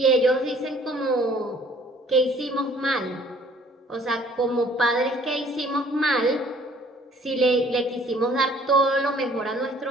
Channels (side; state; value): both; normal; correlation 0.56